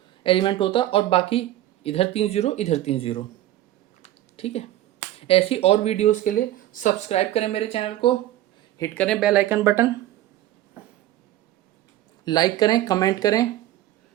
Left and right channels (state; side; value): quieter; left; 14.0 dB